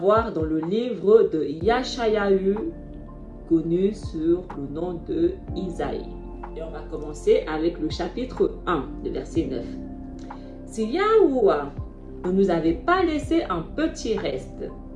dans le livre de Yashayahu, connu sur le nom de Isaïe. Et on va commencer avec le chapitre 1, le verset 9. Si Yahuwah ne nous avait pas laissé un petit reste,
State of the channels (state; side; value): identical; both; correlation 1.00